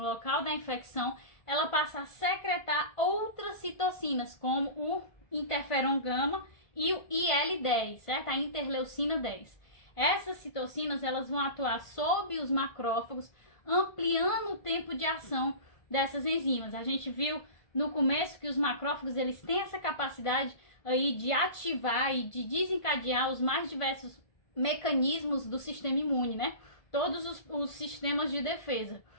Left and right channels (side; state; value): right; late; 1.5 ms